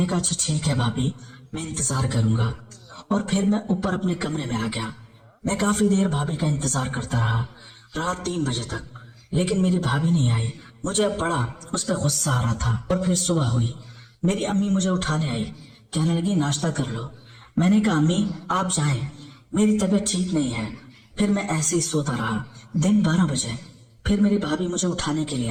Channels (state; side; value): identical; both; correlation 1.00